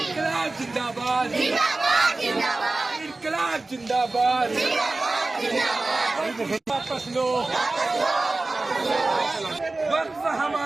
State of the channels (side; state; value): left; quieter; 3.2 dB